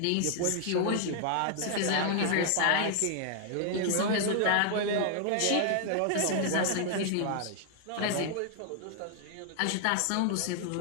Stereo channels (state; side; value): different; both; correlation 0.00